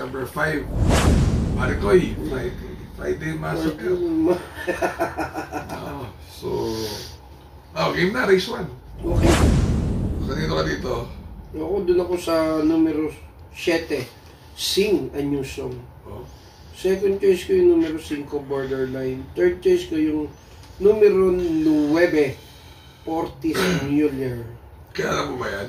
5. Marikoy, Friday Massacre. Game na, race 1. Okay. Kanino ka dito? Ako, dun ako sa numero 7. Sing a New Song. Oh. Second choice ko yung numero 5, Borderline. Third choice ko yung numero 9, Ortiz Mueller. Kaya alam mo ba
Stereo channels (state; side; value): identical; both; correlation 1.00